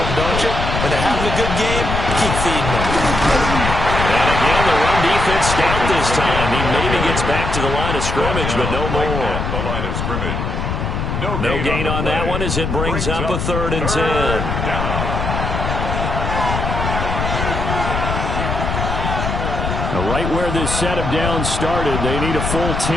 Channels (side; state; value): left; noise; rumble, 2 dB below the sound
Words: don't you? When they're having a good game, keep feeding them. And again, the run defense stout this time. He maybe gets back to the line of scrimmage, but no more. The line of scrimmage. No gain on that one as it brings up a 3rd and 10. Right where this set of downs started, they need a full